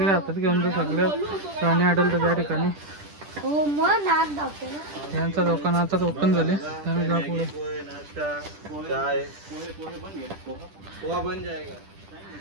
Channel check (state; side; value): late; left; 10 ms